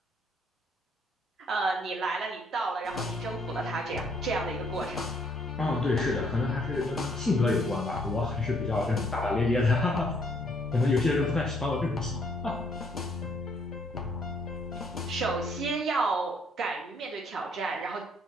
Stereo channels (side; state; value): both; normal; correlation 0.66